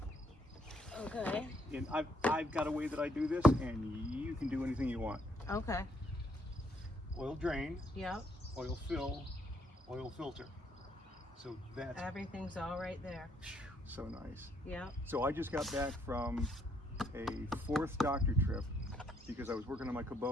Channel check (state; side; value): normal; both; correlation 0.71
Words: Okay. And I've got a way that I do this, and you can do anything you want. Okay. Oil drain, Yep. oil fill, oil filter. So that's Everything's all right there. so nice. Yep. So I just got back from a 4th doctor trip because I was working on my